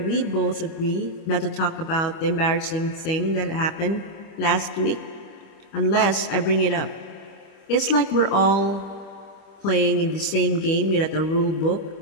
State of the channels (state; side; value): late; right; 25 ms